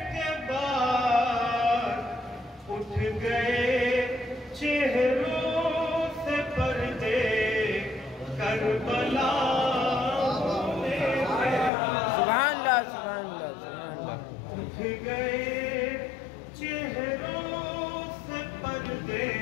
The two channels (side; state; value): right; drops out; at 11.7 s